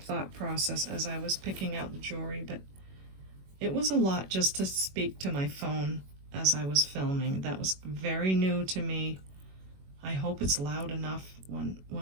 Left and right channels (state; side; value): late; left; 21 ms